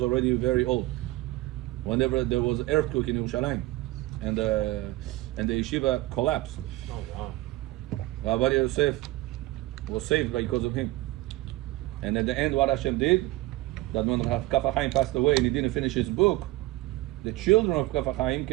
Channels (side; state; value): left; quieter; 18.4 dB